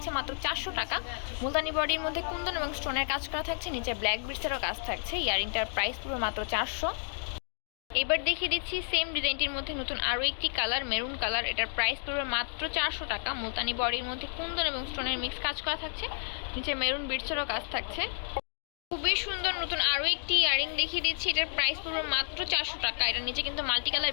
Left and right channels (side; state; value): right; silent; digital silence